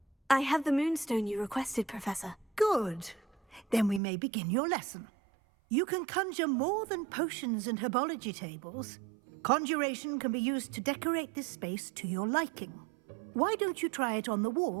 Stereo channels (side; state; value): left; drops out; at 4.0 s